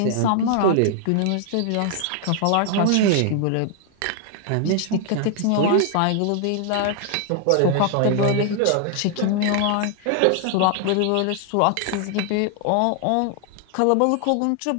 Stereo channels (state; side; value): different; both; correlation 0.00